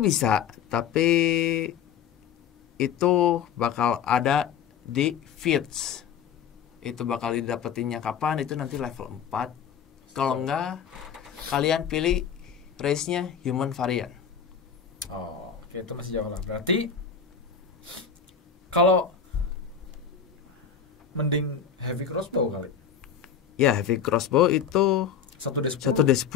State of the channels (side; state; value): right; quieter; 7.5 dB